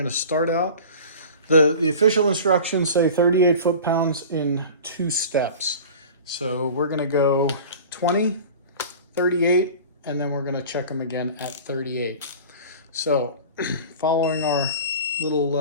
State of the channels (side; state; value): both; inverted; correlation -0.38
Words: to start out The official instructions say 38 foot-pounds in 2 steps. So we're gonna go 20, 38, and then we're gonna check them again at 38. So following our